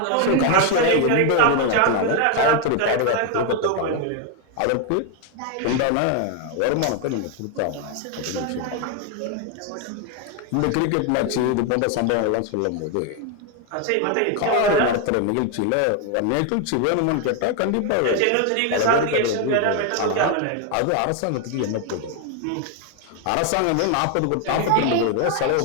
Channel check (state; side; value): different; both; correlation 0.01